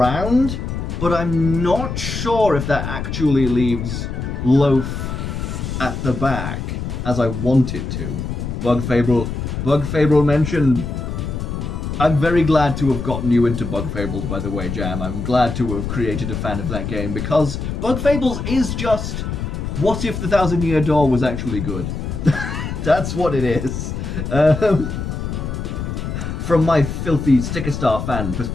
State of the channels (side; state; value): left; noise; rumble, 4 dB below the sound